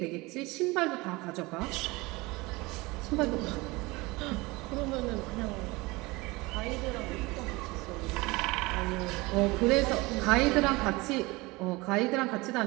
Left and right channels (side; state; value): left; quieter; 22.9 dB